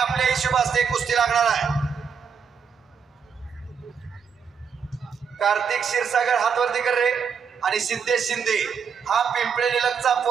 हिशोबाने कुस्ती लागणार आहे। कार्तिक क्षीरसागर हातवरती कर रे, आणि शिंदे हा पिंपळे निलगचा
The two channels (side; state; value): left; quieter; 6.5 dB